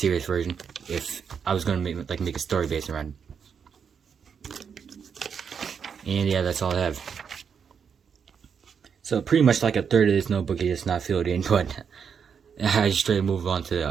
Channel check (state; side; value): quieter; left; 6.9 dB